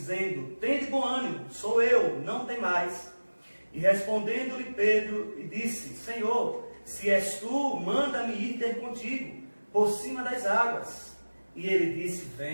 Tende bom ânimo, sou eu, não temais. E respondendo-lhe Pedro, e disse: Senhor, se és tu, manda-me ir ter contigo, por cima das águas. E ele disse:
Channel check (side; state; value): both; inverted; correlation -1.00